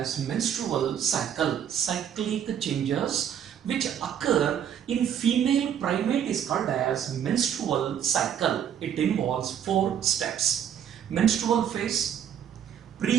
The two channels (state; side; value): quieter; left; 9.1 dB